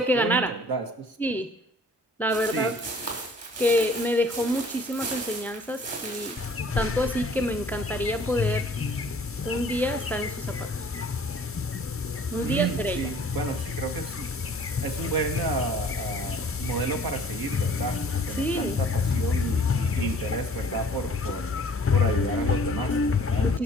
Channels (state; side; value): normal; both; correlation 0.53